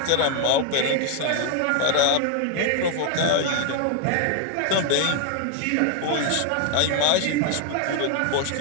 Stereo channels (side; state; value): both; different; correlation 0.00